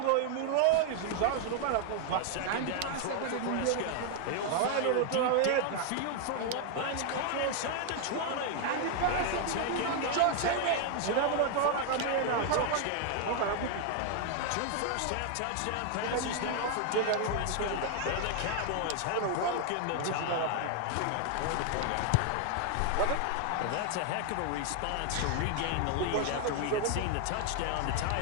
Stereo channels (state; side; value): different; both; correlation 0.00